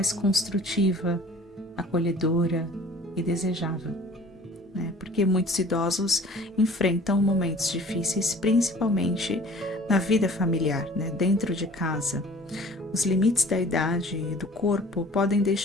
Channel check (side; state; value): both; normal; correlation 0.48